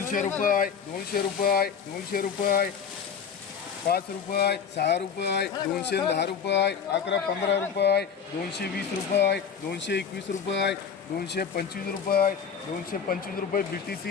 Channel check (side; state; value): right; quieter; 6.9 dB